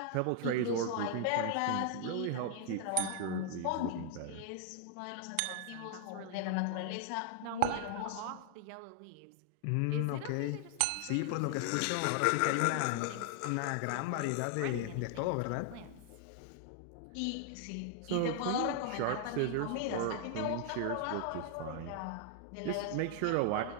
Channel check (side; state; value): both; different; correlation 0.00